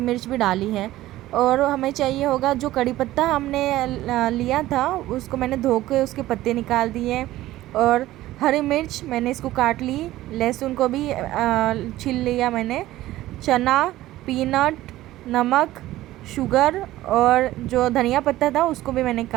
भी डाली है। और हमें चाहिए होगा जो कड़ी पत्ता हमने लिया था, उसको मैंने धो के उसके पत्ते निकाल दिए। और हरी मिर्च मैंने इसको काट ली, लहसुन को भी छील लिया मैंने। चना, पीनट, नमक, शुगर और जो धनिया पत्ता था उसको भी मैंने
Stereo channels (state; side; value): quieter; left; 15.7 dB